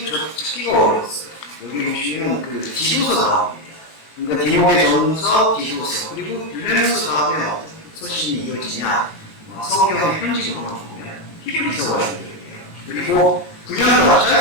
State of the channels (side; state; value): right; late; 18 ms